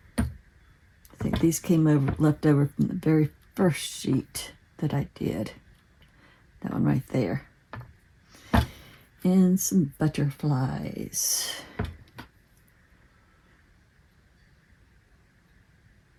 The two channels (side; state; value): both; identical; correlation 1.00